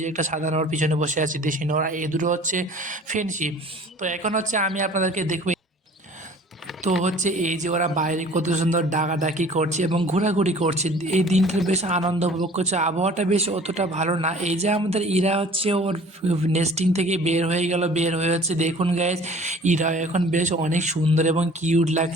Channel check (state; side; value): normal; both; correlation 0.48